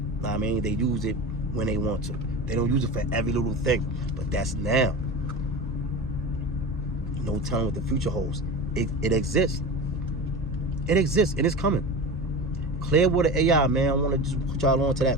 Know what I mean? They use it when they want to. They don't use it for every little thing. But that's now. No telling what the future holds. It exists. It exists and it's coming. Clearwater AI, man. I want to just put y'all on to that,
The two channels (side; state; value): both; normal; correlation 0.29